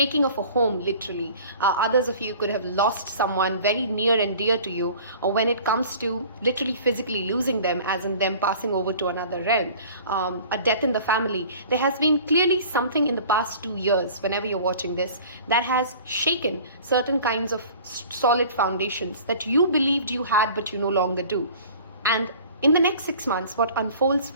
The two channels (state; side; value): inverted; both; correlation -0.45